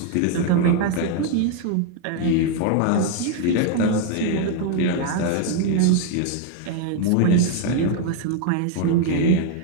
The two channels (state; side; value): different; both; correlation 0.00